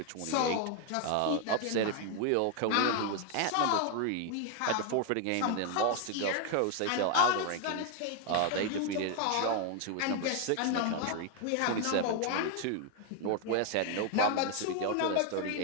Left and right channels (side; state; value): both; different; correlation 0.01